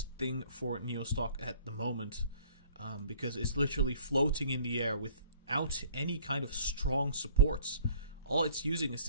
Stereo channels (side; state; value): both; inverted; correlation -0.53